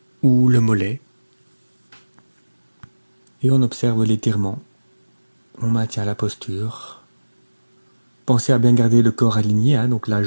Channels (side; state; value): both; inverted; correlation -1.00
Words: ou le mollet. Et on observe l'étirement. On maintient la posture. Pensez à bien garder le corps aligné, donc la